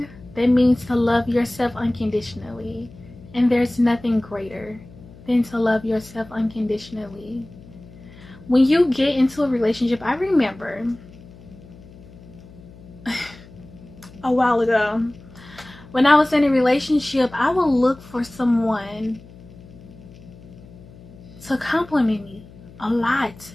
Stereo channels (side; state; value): left; noise; hum, 20 dB below the sound